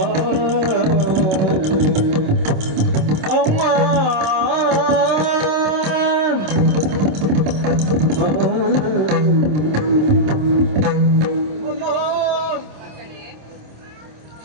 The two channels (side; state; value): left; late; 26 ms